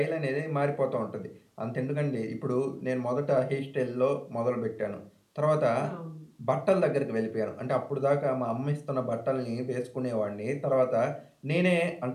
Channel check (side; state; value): both; identical; correlation 1.00